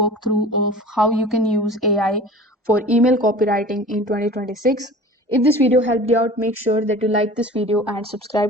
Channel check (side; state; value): both; normal; correlation 0.41